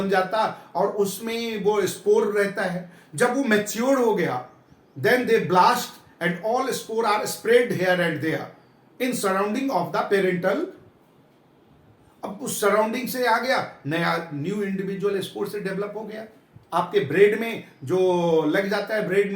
जाता और उसमें वो स्पोर रहता है। जब वो मैच्योर हो गया, then they blast and all spore are spread here and there in surrounding of the parental. अब उस सराउंडिंग से आ गया, नया न्यू इंडिविजुअल स्पोर से डेवलप हो गया। आपके ब्रेड में जो लग जाता है ब्रेड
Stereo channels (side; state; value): both; identical; correlation 1.00